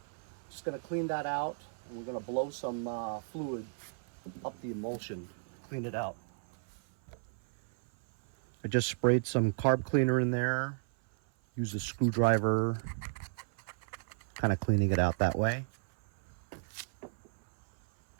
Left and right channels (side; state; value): left; silent; 55 dB below the other